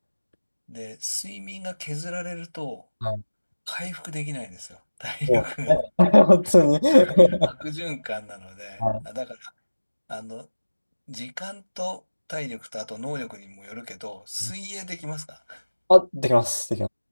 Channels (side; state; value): both; inverted; correlation -1.00